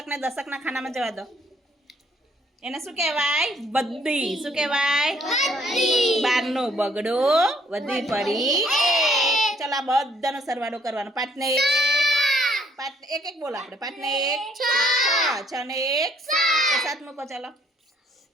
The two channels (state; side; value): normal; both; correlation 0.65